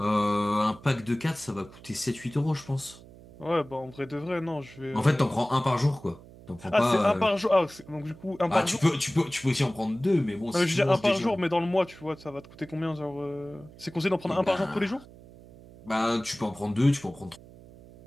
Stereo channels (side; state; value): right; noise; hum, 20 dB below the sound